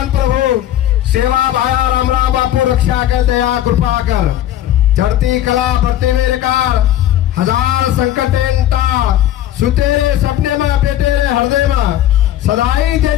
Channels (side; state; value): right; quieter; 12.3 dB